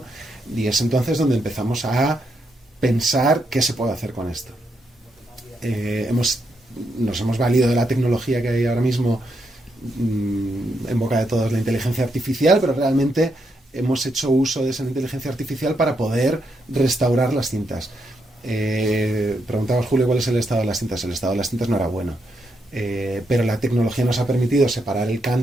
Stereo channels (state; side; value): normal; both; correlation 0.80